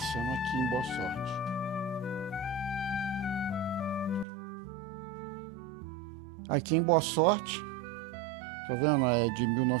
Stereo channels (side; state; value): left; drops out; at 4.2 s